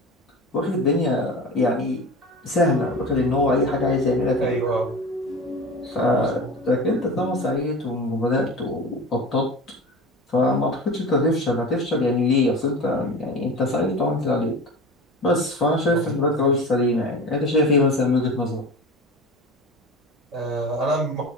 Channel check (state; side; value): normal; both; correlation 0.32